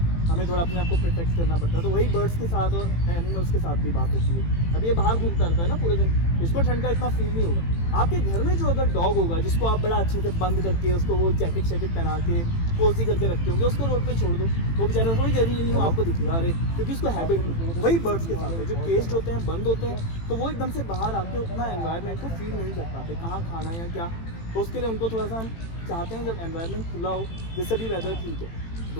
हमें थोड़ा अपने आप को प्रोटेक्ट करना पड़ता है। तो वही बर्ड्स के साथ और एनिमल्स के साथ भी बात होती है। अब ये बाहर घूमता रहता है ना पूरे दिन, इसको ठंड का इतना फील नहीं होगा। आपके घर में जो अगर डॉग होगा जिसको आप बड़ा अच्छे से बंद करके, उसको वो जैकेट पहना के कोजी करके रखते होंगे, उसको रोड पे छोड़ दो, वो बेचारा थोड़ी देर नहीं हो आपको दिखेगा, अरे क्योंकि उसको हैबिट नहीं। वही बर्ड्स के साथ है, जो केस्ड होते हैं, बंद होते हैं, तो वो एकदम से बाहर आके उतना एनवायरनमेंट को फील नहीं कर पाते, कहाँ खाना है या क्या। तो उसके लिए उनको थोड़ा सा हम चाहते हैं जब एनवायरनमेंट खुला हो, जैसे भी वेदर ठीक है,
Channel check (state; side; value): late; right; 18 ms